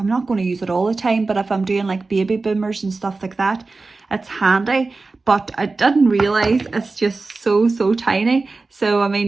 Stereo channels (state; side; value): quieter; left; 3.7 dB